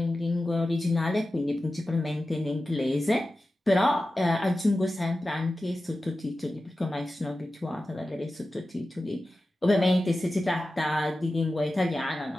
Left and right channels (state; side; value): normal; both; correlation 0.94